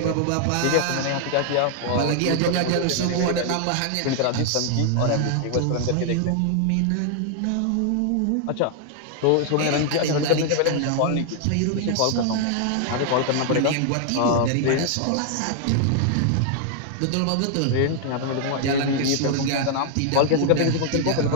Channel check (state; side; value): different; both; correlation 0.00